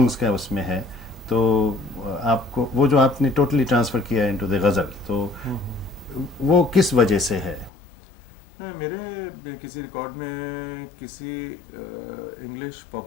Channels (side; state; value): right; drops out; at 7.7 s